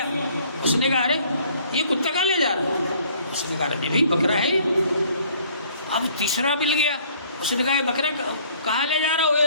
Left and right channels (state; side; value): inverted; both; correlation -0.58